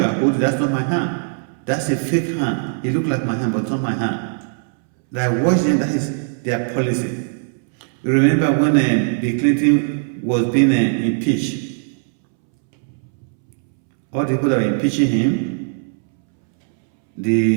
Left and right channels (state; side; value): silent; left; 66 dB below the other